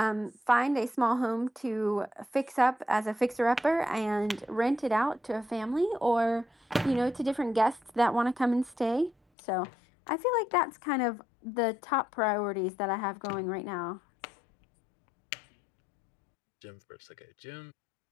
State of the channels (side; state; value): right; drops out; at 9.2 s